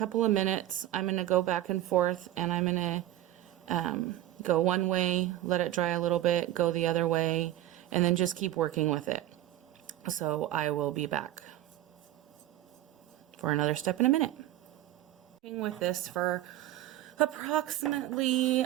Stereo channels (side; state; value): left; quieter; 14.2 dB